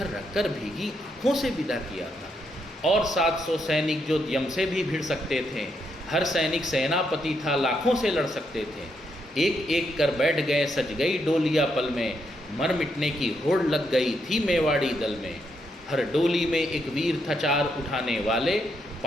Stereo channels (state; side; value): normal; both; correlation 0.78